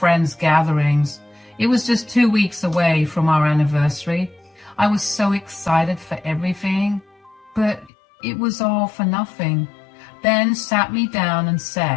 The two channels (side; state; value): right; drops out; at 7.9 s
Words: gatherings. It was just 2 weeks away from our anniversary. I was so excited for everything, but it was all for nothing. Ben sat me down and